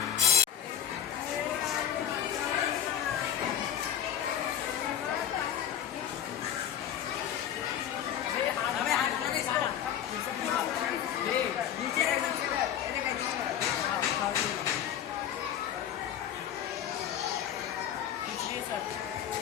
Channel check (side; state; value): right; quieter; 10.1 dB